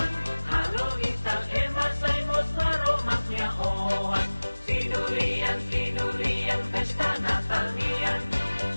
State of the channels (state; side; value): inverted; both; correlation -1.00